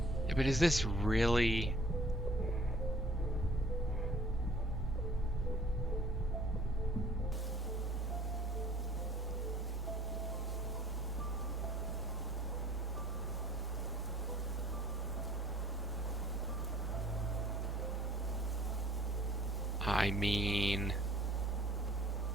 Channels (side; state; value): both; normal; correlation 0.54